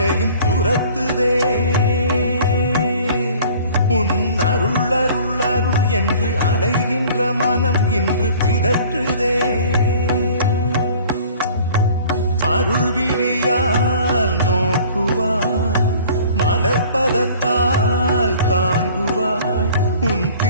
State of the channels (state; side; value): inverted; both; correlation -0.49